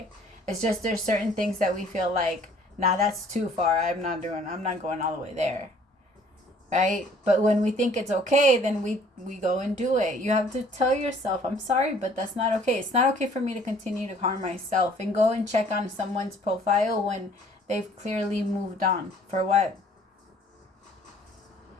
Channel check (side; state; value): both; normal; correlation 0.57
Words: It's just there's certain things that we feel like, nah, that's too far. I'm not going all the way there. Right? But when we think it's okay, then we go and do it. You have to tell yourself, I'm sorry, but that's not okay. It's not okay for me to continue to harm myself and go and check on someone's profile when they've clearly moved on. For what?